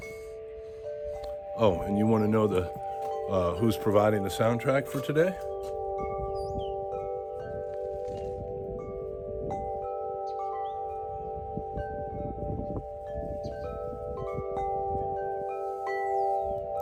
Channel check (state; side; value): identical; both; correlation 1.00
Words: Oh, and you want to know who's providing the soundtrack for today?